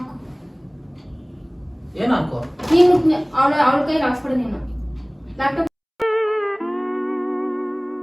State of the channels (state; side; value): identical; both; correlation 1.00